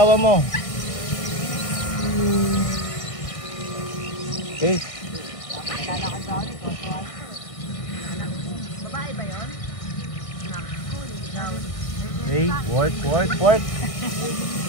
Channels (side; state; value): right; late; 1.5 ms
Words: mo. Okay. Babae ba yun? Okay, work.